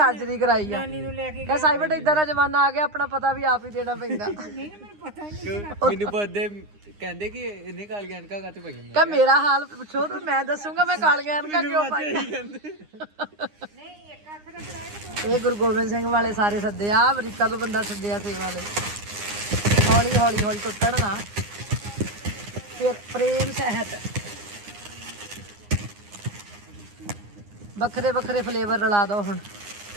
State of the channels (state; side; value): late; left; 9.8 ms